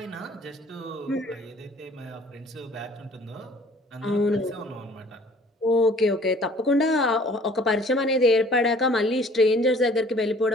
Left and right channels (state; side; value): normal; both; correlation 0.53